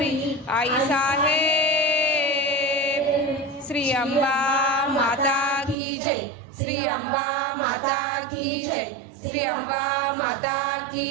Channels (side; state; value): left; drops out; at 5.8 s